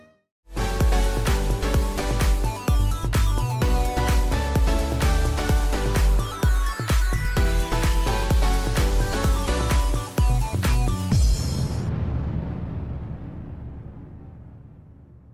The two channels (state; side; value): identical; both; correlation 1.00